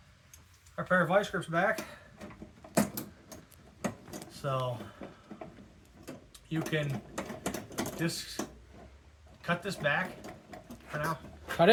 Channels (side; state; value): both; identical; correlation 1.00